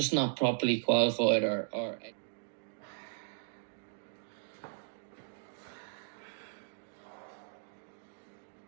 not properly qualified or.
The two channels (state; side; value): silent; left; digital silence